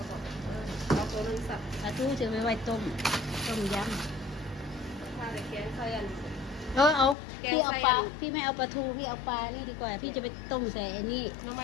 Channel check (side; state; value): right; drops out; at 7.2 s